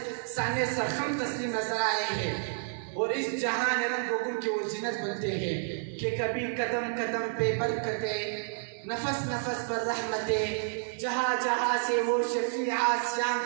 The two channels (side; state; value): left; silent; digital silence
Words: سانے سرخم تسلیم نظر آئے ہیں اور اس جہان رنگ و گل کی وہ زینت بنتے ہیں کہ کبھی قدم قدم پہ برکتیں نفس نفس پر رحمتیں جہاں جہاں سے وہ شفیع آسیاں